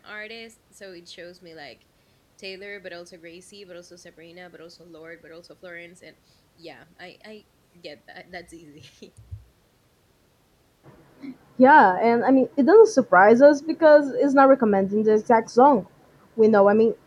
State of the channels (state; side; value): identical; both; correlation 1.00